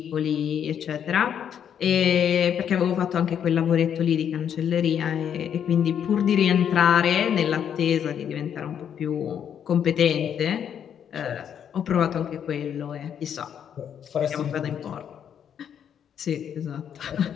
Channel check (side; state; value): right; quieter; 8.7 dB